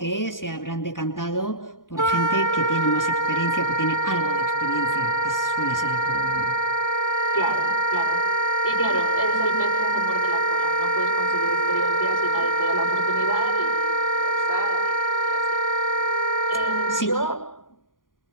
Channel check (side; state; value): right; late; 0.90 ms